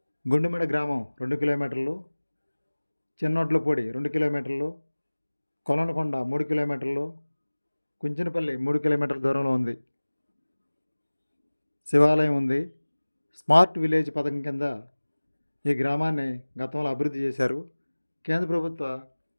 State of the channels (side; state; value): both; inverted; correlation -1.00